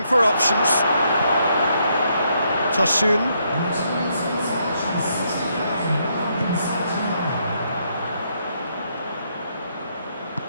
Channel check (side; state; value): both; inverted; correlation -0.75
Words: for options. Tosun.